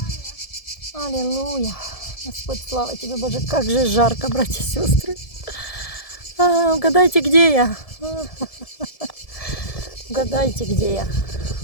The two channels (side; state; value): right; late; 1.7 ms